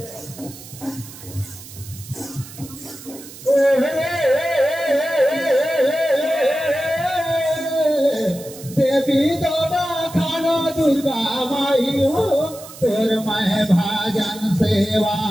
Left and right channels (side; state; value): right; noise; hiss, 16 dB below the sound